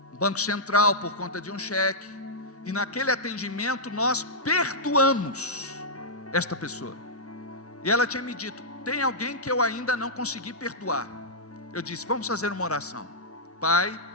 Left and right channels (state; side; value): normal; both; correlation -0.10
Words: Banco Central, por conta de um cheque. E naquele atendimento nós perdoamos esta pessoa. E ela tinha me dito: tem alguém que eu ainda não consegui perdoar. Eu disse: vamos fazer uma oração. Pai,